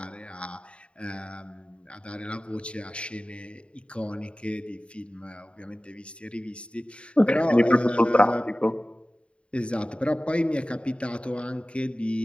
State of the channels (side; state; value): right; late; 0.058 ms